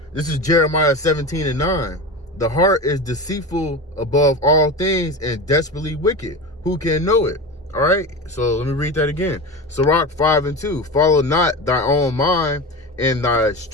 this is Jeremiah 17 and 9. "The heart is deceitful above all things and desperately wicked. Who can know it?" All right, so let me read that again. Sirach 5 and 2. "Follow not thy own mind and thy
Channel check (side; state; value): both; normal; correlation 0.26